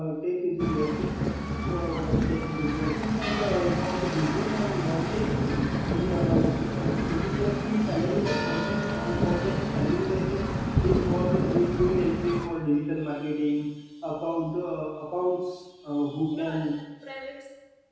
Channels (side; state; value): both; identical; correlation 1.00